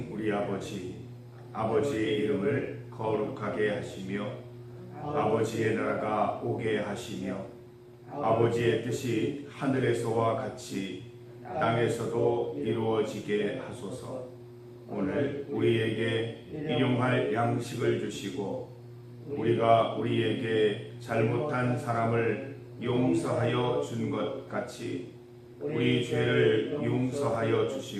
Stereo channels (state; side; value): identical; both; correlation 1.00